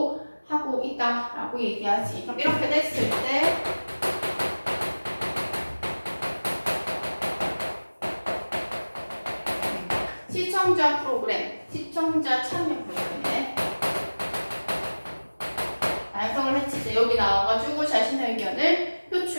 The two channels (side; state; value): both; inverted; correlation -1.00